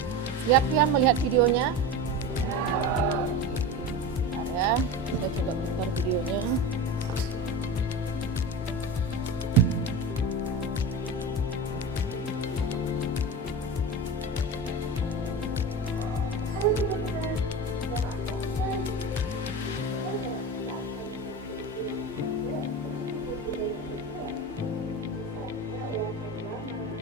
Siap ya melihat videonya? Bentar ya, saya coba putar videonya.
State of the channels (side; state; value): both; normal; correlation 0.27